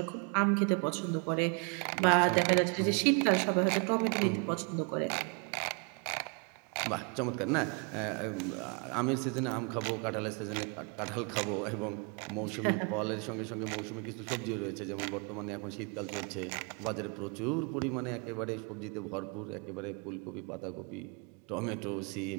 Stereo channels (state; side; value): quieter; left; 34.8 dB